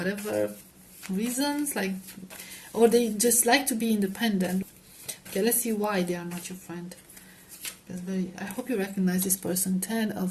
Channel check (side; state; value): both; identical; correlation 1.00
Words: reasons, like, or they just like to be independent. Okay, let's see why they are not your friend. I hope you recognize this person. Ten